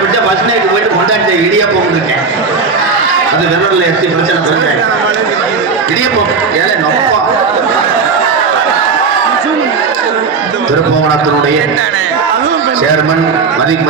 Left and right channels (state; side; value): quieter; left; 4.9 dB